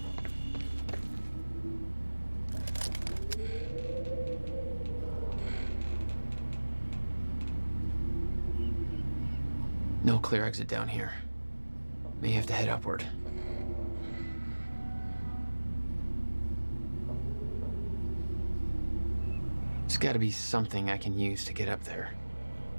No clear exit down here. May have to head upward. There's gotta be something I can use to get up there.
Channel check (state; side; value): inverted; both; correlation -1.00